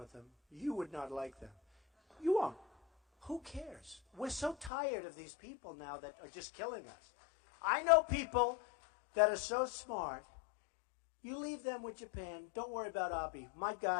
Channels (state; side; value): drops out; right; at 4.7 s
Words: them. You would not like them. You won't. Who cares? We're so tired of these people now that are just killing us. I know people that are so smart. You leave them with Japan. Don't worry about Abe. My